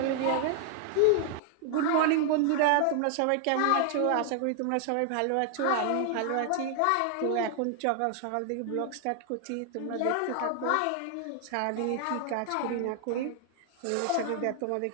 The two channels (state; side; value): different; both; correlation 0.00